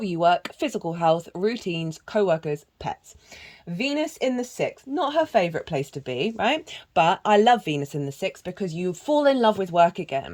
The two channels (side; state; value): both; identical; correlation 1.00